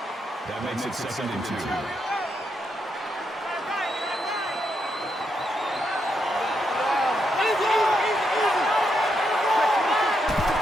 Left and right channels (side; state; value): both; normal; correlation 0.80